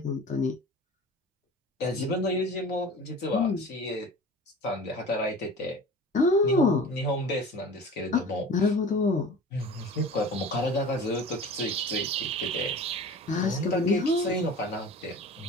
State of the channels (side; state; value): both; normal; correlation 0.39